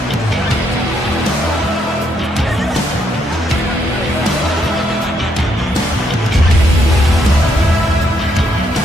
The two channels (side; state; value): both; normal; correlation 0.75